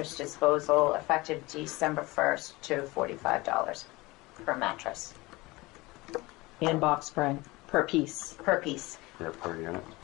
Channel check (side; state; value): right; quieter; 21.9 dB